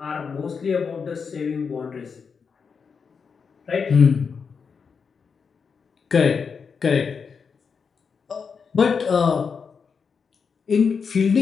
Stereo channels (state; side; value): quieter; right; 5.8 dB